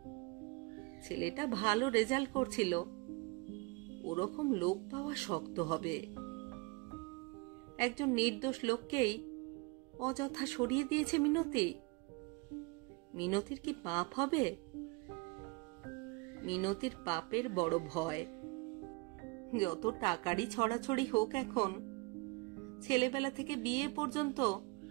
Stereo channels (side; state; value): left; quieter; 25.7 dB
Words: ছেলেটা ভালো রেজাল্ট করছিল, ওরকম লোক পাওয়া শক্ত হবে। একজন নির্দোষ লোককেই অযথা সরিয়ে দিয়েছে মিনতি। মিনতির কি পাপ হবে? মিনতির পাপের বড় ভয়। যত টাকারই ছড়াছড়ি হোক, এখন ছেলেবেলা থেকে বিয়ে পর্যন্ত